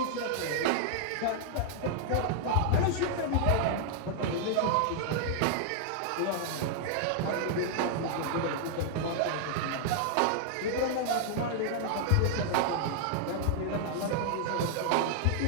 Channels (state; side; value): different; both; correlation -0.01